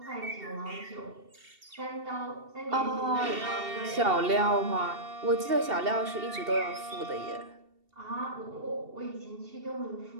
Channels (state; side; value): late; left; 2.7 ms